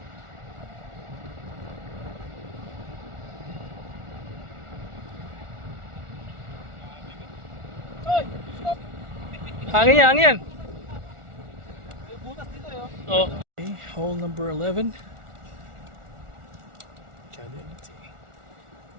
Hangin yan, hangin yan. May butas dito eh. Oh. Okay, hole number 11. Cadility.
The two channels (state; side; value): late; left; 1.4 ms